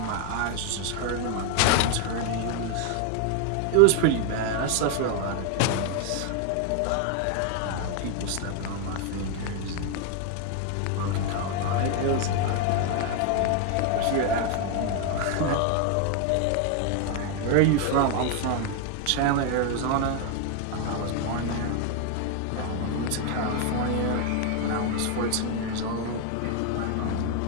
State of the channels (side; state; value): both; different; correlation 0.01